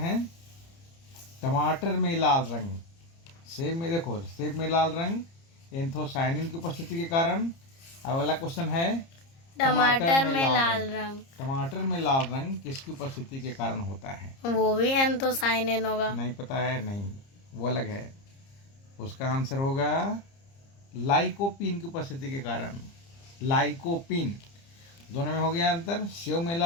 टमाटर में लाल रंग, सेब में देखो, सेब में लाल रंग एंथोसायनिन की उपस्थिति के कारण। अब अगला क्वेश्चन है, टमाटर में लाल रंग। टमाटर में लाल रंग किसकी उपस्थिति के कारण होता है? वो भी एंथोसायनिन होगा। नहीं पता है? नहीं, वो अलग है। उसका आंसर होगा लाइकोपीन की उपस्थिति के कारण। लाइकोपीन, दोनों में हो गया अंतर। सेब में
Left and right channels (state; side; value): late; right; 30 ms